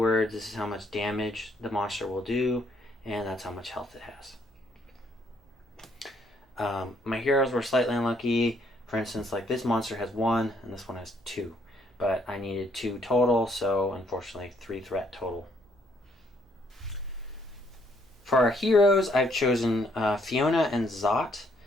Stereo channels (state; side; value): normal; both; correlation 0.68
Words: This is how much damage the monster will do, and that's how much health it has. My heroes were slightly unlucky. For instance, like this monster has 1 and this one has 2, but I needed 2 total, so unfortunately 3 threat total. For our heroes, I've chosen Fiona and Zot.